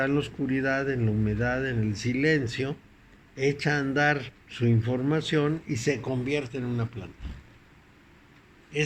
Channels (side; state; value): both; identical; correlation 1.00